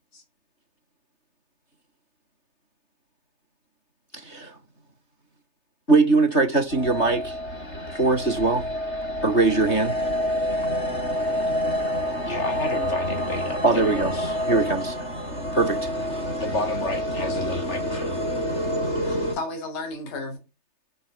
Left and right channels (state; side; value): late; right; 3.2 ms